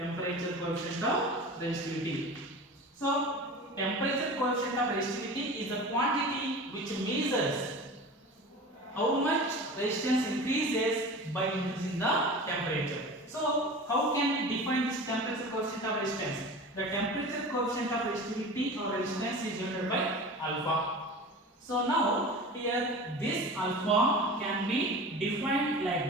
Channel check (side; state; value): both; normal; correlation 0.34